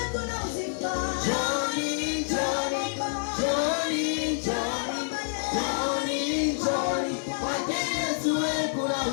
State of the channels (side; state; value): right; silent; 60 dB below the other